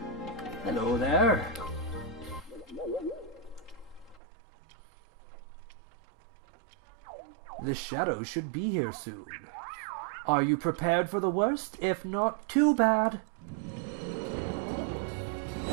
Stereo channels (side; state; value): left; drops out; at 4.2 s